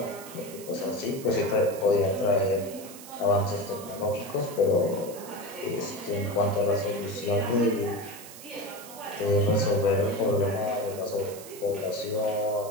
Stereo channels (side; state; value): right; noise; hiss, 15 dB below the sound